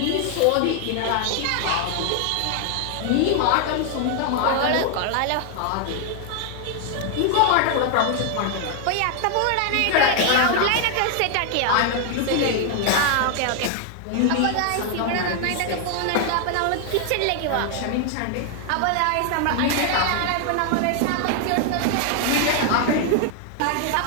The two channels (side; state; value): both; different; correlation 0.00